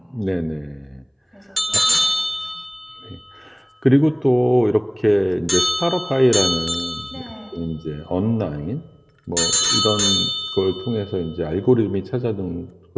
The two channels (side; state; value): both; identical; correlation 1.00